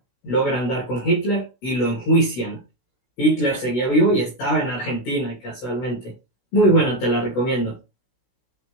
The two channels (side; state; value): right; late; 16 ms